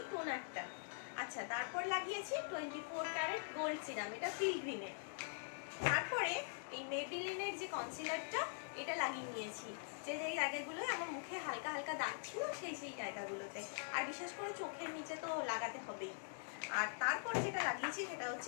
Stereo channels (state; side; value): silent; right; digital silence